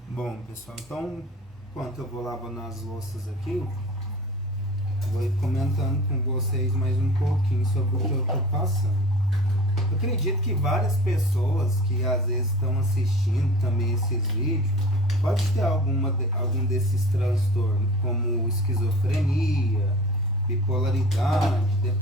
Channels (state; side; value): normal; both; correlation 0.41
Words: Bom, pessoal, então, enquanto eu vou lavando as louças aqui, vou ir comentando com vocês mais um pouquinho sobre o que eu estou passando. Eu acredito que várias pessoas que às vezes estão assistindo também esses vídeos pode ter algum desses transtornos, como esquizofrenia, bipolaridade,